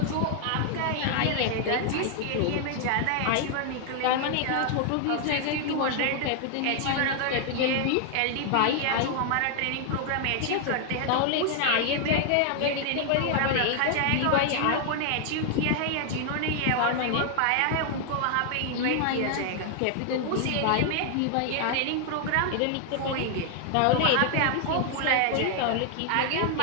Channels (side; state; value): both; different; correlation 0.00